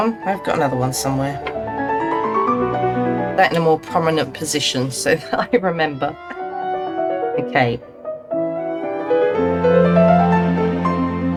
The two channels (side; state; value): both; identical; correlation 1.00